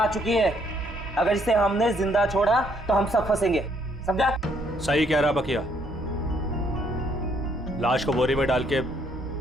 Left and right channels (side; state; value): both; normal; correlation 0.68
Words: चुकी है, अगर इसे हमने जिंदा छोड़ा तो हम सब फंसेंगे, समझा? सही कह रहा बकिया, लाश को बोरी में डाल के